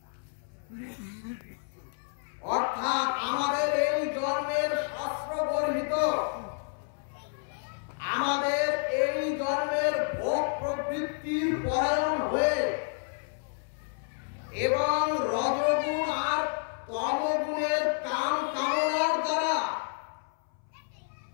অর্থাৎ আমাদের এই জন্মের শাস্ত্র গর্হিত, আমাদের এই জন্মের ভোগ প্রবৃত্তির পরায়ণ হয়ে এবং রজগুণ আর তমগুণের কাম কামনার দ্বারা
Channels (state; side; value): silent; right; 58 dB below the other